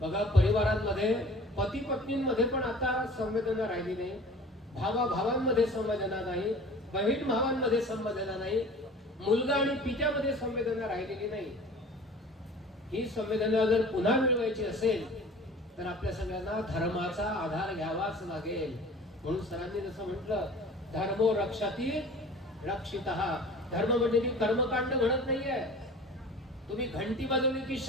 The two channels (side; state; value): both; normal; correlation 0.43